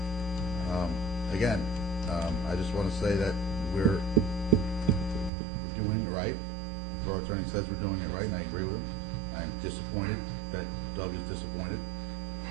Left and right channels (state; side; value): drops out; left; at 5.3 s